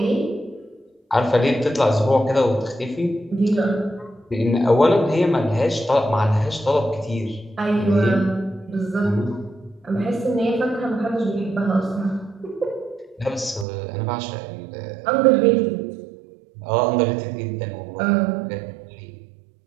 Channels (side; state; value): left; drops out; at 13.7 s